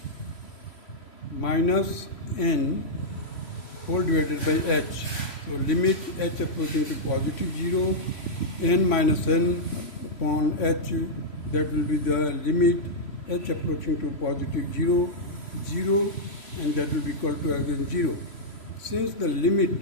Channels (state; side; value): late; right; 3.0 ms